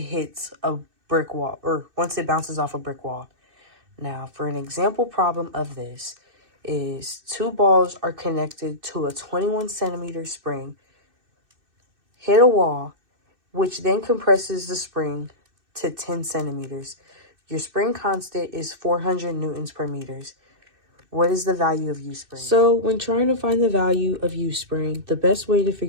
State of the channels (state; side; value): late; left; 2.6 ms